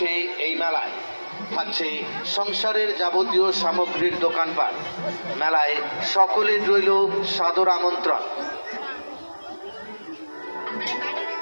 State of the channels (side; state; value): both; inverted; correlation -1.00